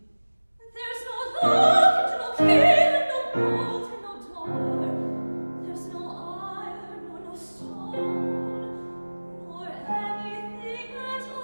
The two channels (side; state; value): both; inverted; correlation -1.00